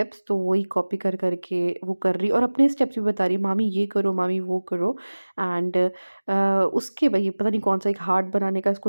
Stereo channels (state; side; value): inverted; both; correlation -1.00